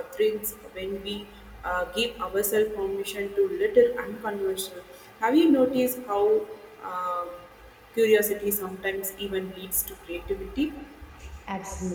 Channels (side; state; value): both; identical; correlation 1.00